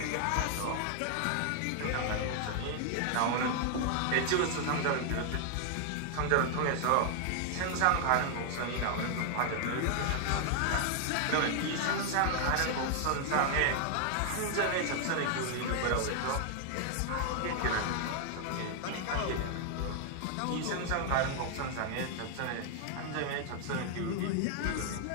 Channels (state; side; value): different; both; correlation 0.00